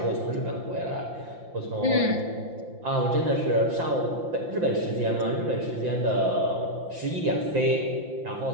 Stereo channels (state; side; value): late; left; 5.8 ms